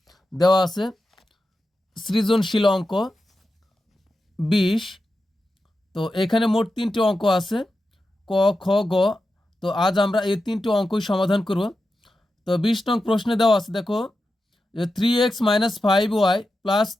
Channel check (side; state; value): both; normal; correlation 0.90